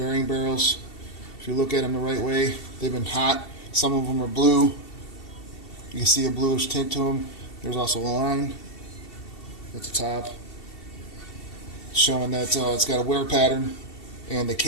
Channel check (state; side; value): late; right; 2.7 ms